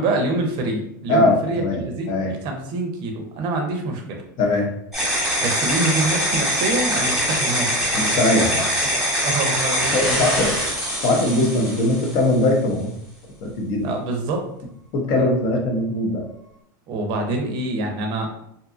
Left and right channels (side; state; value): both; normal; correlation 0.24